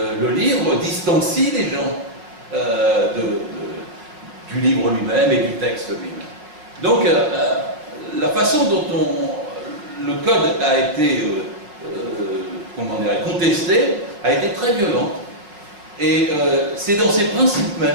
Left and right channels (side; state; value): left; late; 5.3 ms